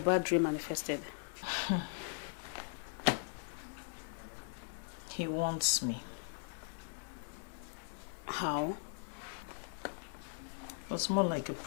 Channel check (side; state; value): right; silent; 52 dB below the other